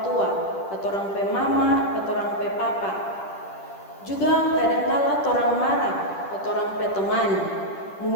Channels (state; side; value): late; right; 10 ms